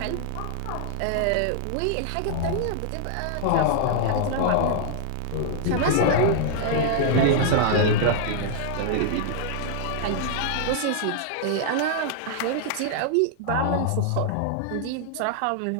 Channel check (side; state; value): both; different; correlation -0.01